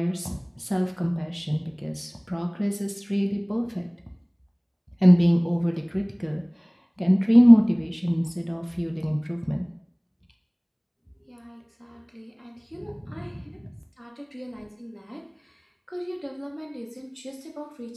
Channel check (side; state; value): both; identical; correlation 1.00